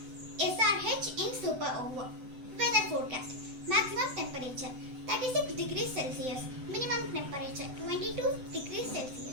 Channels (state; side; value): late; left; 7.9 ms